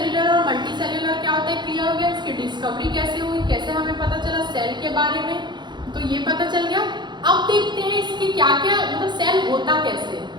और मल्टी सेल्यूलर क्या होता है, क्लियर हो गया। इसकी डिस्कवरी कैसे हुई, कैसे हमें पता चला सेल के बारे में, तो ये पता चल गया। अब देखते हैं इसके क्या क्या, मतलब सेल होता कैसे।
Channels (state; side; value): late; left; 0.21 ms